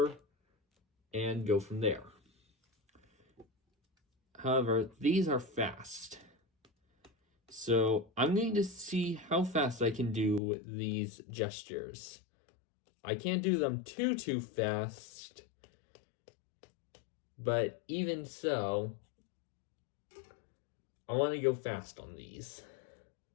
and go from there. However, these are fast. So I'm going to see how fast I can do these gestures. I can't do them too fast, but even so, I want to go fast on these.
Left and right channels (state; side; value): drops out; right; at 10.4 s